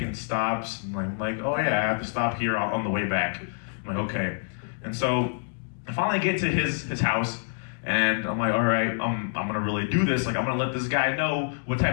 stops. I'm like, oh yeah, I have to stop here on the way back. I'm like, okay. And so I finally get to his house, and I'm like, all right, I'm gonna really do this. Like, I'm gonna let this guy know what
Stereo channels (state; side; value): silent; right; digital silence